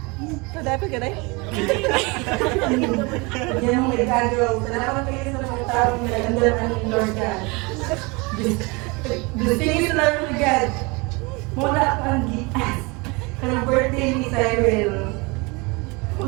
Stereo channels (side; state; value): left; quieter; 27.2 dB